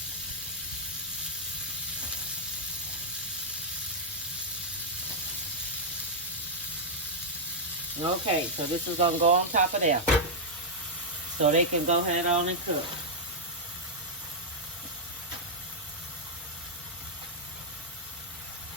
Okay, so this is going to go on top of there. So they can go ahead on and cook.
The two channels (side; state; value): both; normal; correlation -0.06